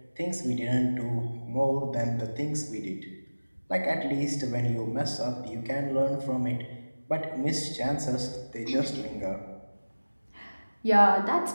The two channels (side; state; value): both; inverted; correlation -1.00